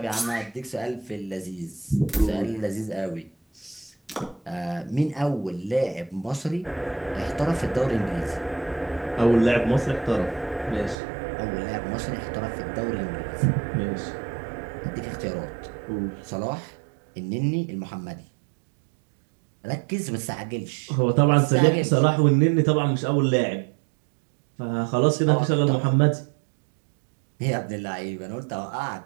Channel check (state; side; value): drops out; left; at 11.0 s